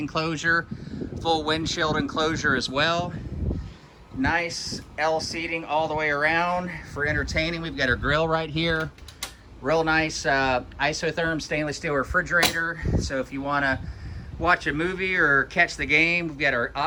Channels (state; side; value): identical; both; correlation 1.00